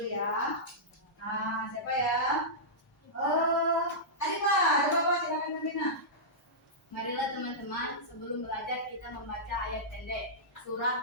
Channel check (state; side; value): normal; both; correlation -0.13